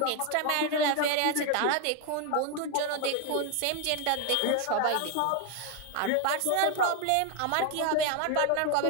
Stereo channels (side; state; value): both; different; correlation 0.01